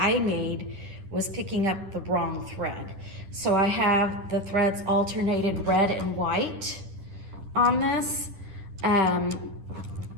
made, was picking up the wrong thread. So I have the threads alternated red and white on this.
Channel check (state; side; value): late; left; 10 ms